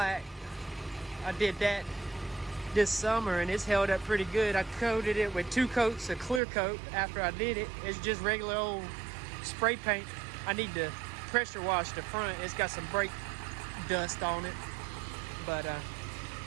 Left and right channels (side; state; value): left; drops out; at 6.4 s